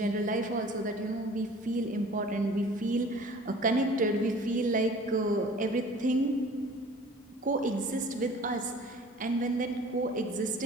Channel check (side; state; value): both; normal; correlation 0.47